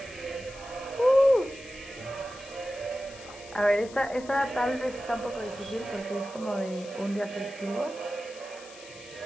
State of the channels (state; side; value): noise; left; hiss, 18 dB below the sound